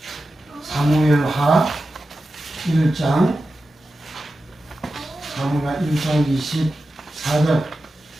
사무엘하 1장 24절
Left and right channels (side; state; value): both; normal; correlation 0.92